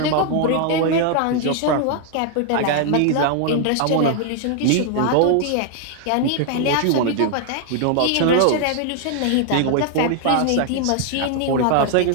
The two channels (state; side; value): different; both; correlation 0.00